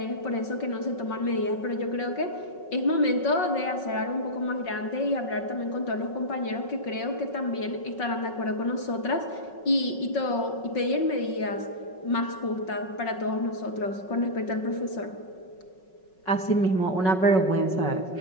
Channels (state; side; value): late; right; 5.4 ms